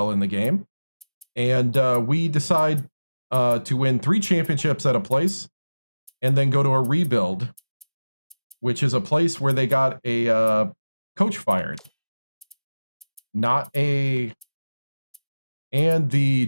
in the game, and we decide to win 3 championships at a place, and then go to a rebuild, which is a place where they got a coach fired. And the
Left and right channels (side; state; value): both; inverted; correlation -1.00